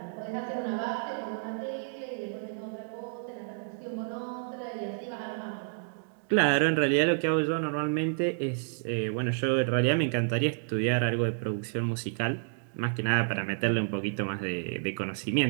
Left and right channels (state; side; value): silent; left; digital silence